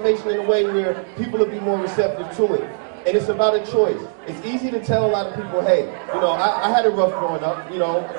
in a way where people will be more receptive to it. And it's about a choice. It's easy to tell a lot of people, hey, you know, I had it rough growing up. I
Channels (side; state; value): left; silent; digital silence